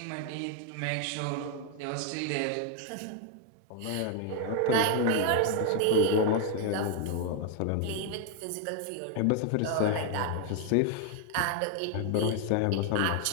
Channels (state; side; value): different; both; correlation 0.00